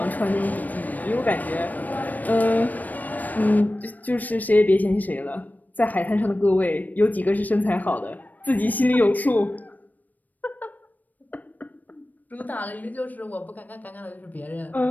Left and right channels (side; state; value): right; late; 0.082 ms